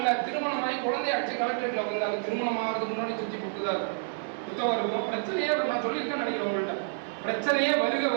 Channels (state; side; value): silent; left; 59 dB below the other